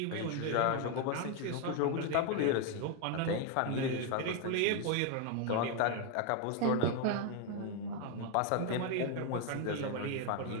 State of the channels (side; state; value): both; different; correlation 0.01